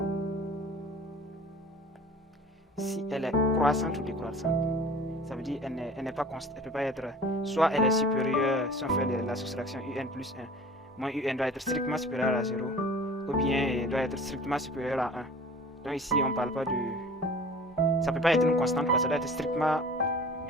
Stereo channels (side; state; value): both; normal; correlation 0.44